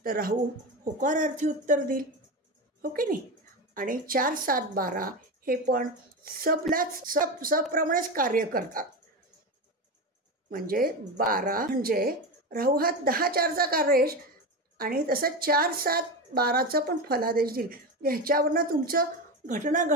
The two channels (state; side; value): normal; both; correlation 0.20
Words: तर राहू होकारार्थी उत्तर देईल. हो की नाही. आणि 4, 7, 12 हे पण सबप्रमाणेच कार्य करतात. म्हणजे 12 म्हणजे राहू हा 10, 4चा कार्येश, आणि तसं 4, 7, 12चा पण फलादेश देईल. ह्याच्यावरनं तुमचं घटना